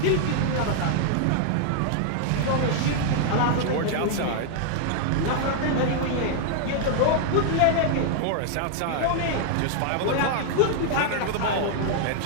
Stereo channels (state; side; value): different; both; correlation 0.00